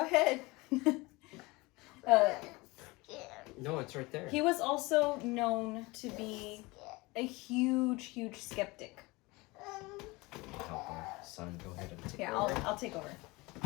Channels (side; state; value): right; quieter; 23.4 dB